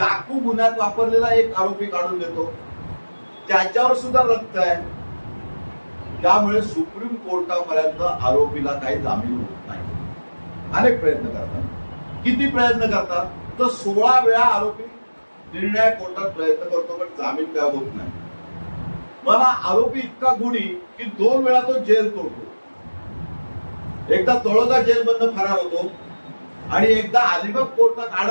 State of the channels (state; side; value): inverted; both; correlation -1.00